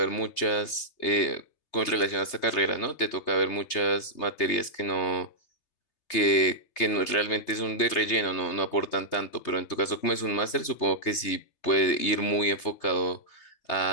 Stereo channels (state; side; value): late; right; 3.3 ms